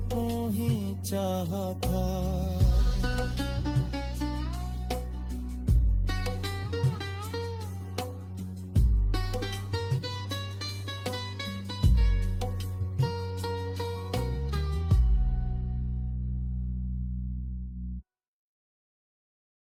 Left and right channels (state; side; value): identical; both; correlation 1.00